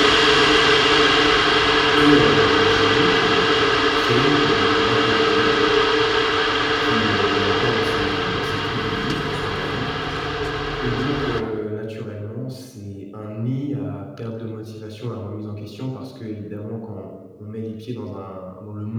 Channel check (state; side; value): identical; both; correlation 1.00